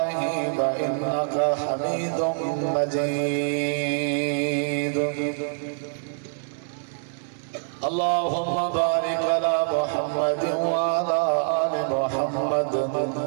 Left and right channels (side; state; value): left; silent; digital silence